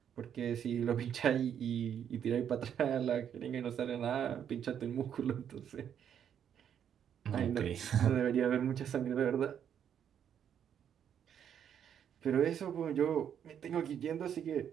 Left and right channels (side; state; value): left; quieter; 8.9 dB